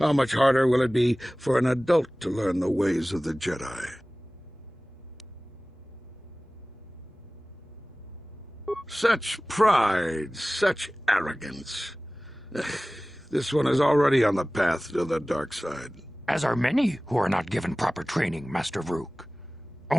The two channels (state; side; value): normal; both; correlation 0.98